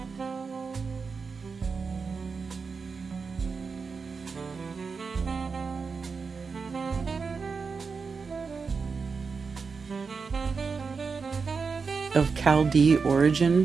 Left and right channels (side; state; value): left; quieter; 5.1 dB